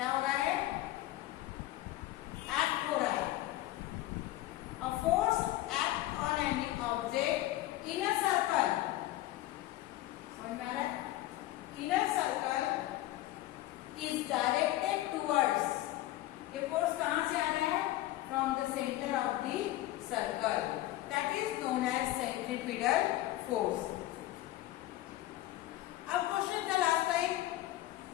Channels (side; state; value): right; quieter; 15.7 dB